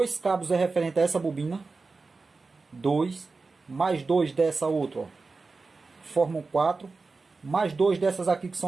cabos é referente a essa bobina. 2, mais 2 dessa outra, ó, formam 4. Mais 2 dessas aqui, que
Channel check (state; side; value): quieter; left; 4.0 dB